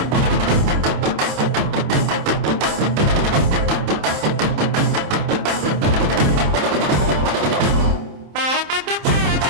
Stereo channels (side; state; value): left; late; 27 ms